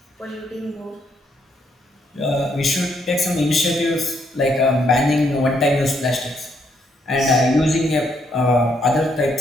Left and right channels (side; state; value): both; normal; correlation 0.73